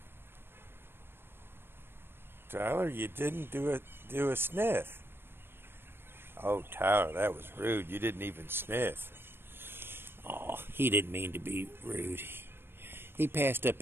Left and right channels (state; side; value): late; left; 0.11 ms